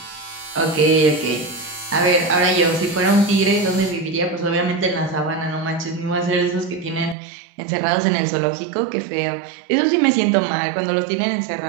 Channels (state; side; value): drops out; left; at 7.2 s